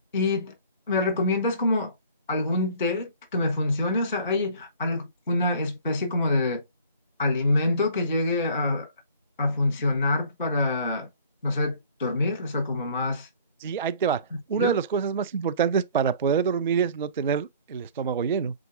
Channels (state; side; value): inverted; both; correlation -0.51